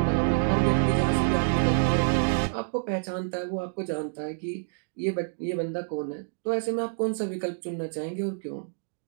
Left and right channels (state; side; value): silent; left; digital silence